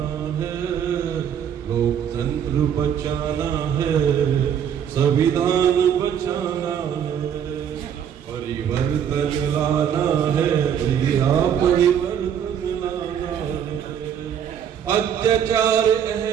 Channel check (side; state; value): left; quieter; 8.8 dB